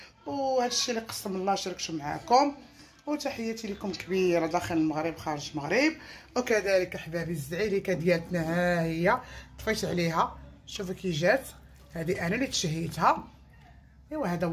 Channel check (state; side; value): identical; both; correlation 1.00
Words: وهادشي اللي قسم الله شاركته معاكم. وتحياتي لكم كبيره داخل المغرب خارج المغرب. وكذلك احبابي الزعيريكه ديالتنا ها هي طفيت عليها، شوفوا كي جات، هذه انا اللي تشهيتها. ايوا هذا